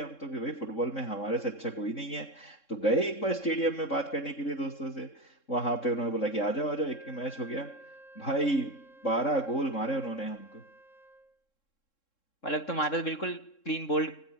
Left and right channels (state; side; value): late; right; 3.7 ms